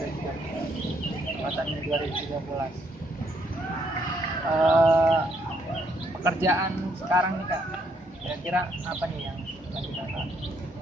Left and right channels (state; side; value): normal; both; correlation 0.71